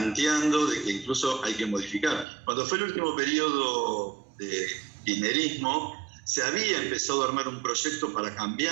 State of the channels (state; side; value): drops out; left; at 2.2 s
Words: de que incluso hay que modificar. Cuando fue el último periodo de kirchnerismo, se había empezado a armar un proyecto para